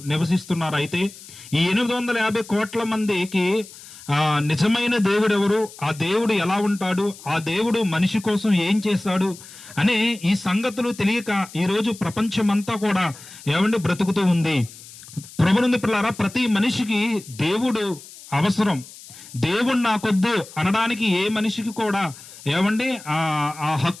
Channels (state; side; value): noise; left; hiss, 18 dB below the sound